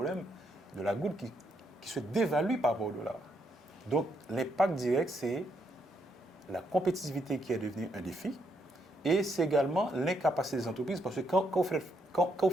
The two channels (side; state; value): both; normal; correlation 0.76